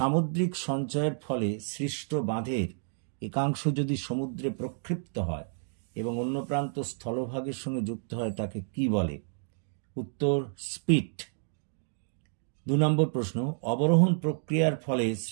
সঞ্চয়ের ফলে সৃষ্ট বাঁধের একাংশ যদি সমুদ্রে প্রক্ষিপ্ত হয় এবং অন্য প্রান্ত স্থলভাগের সঙ্গে যুক্ত হয় তাকে কি বলে? উত্তর স্পিট। 2 নম্বর প্রশ্ন, অবরোহণ প্রক্রিয়ার ফলে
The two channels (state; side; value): silent; left; digital silence